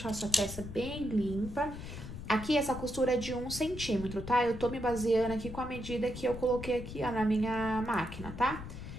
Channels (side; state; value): left; noise; rumble, 10 dB below the sound